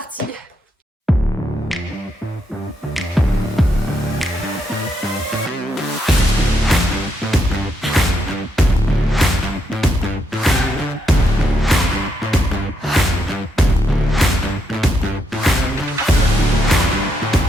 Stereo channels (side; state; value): both; normal; correlation 0.78